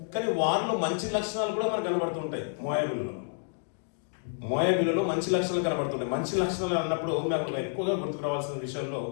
కానీ వారిలో మంచి లక్షణాలు కూడా మనకు కనబడుతుంటాయి. మోయాబీలలో మంచి లక్షణాలు కనబడుతుంటాయి. మంచి లక్షణాలు అన్నప్పుడు నాకు ఎక్కువగా గుర్తుకు రావాల్సిన విషయంలో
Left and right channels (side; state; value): right; silent; digital silence